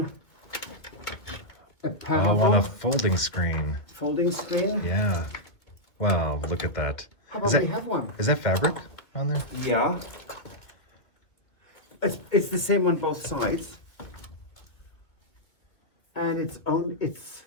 a Oh, on a folding screen. Folding screen? Yeah. Wow, look at that. How about we have one? Is that fabric on there? Yeah. It's the same on both sides. And it's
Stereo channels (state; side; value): late; right; 2.5 ms